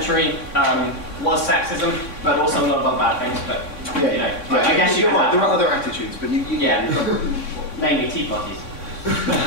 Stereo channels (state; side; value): late; right; 3.6 ms